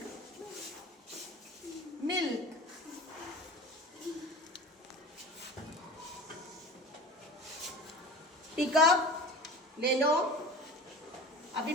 Milk. Pick up ले लो। अभी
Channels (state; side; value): normal; both; correlation 0.37